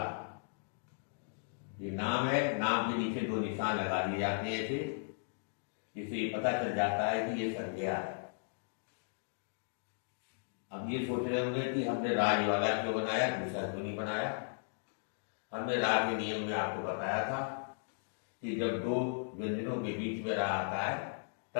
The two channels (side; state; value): right; silent; digital silence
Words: ये नाम है। नाम के नीचे 2 निशान लगा दिए जाते हैं ऐसे, जिससे पता चल जाता है कि ये संज्ञा है। अब ये सोच रहे होंगे कि हमने राज वाला क्यों बनाया, दूसरा क्यों नहीं बनाया। हमने राज के नियम में आपको बताया था कि जब 2 व्यंजनों के बीच में रा आता है